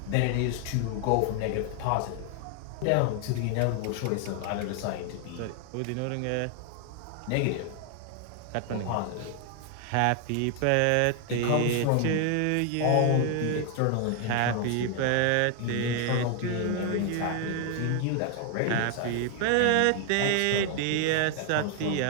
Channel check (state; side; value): different; both; correlation 0.00